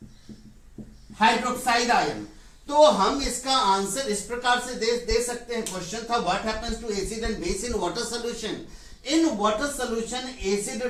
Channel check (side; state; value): both; identical; correlation 1.00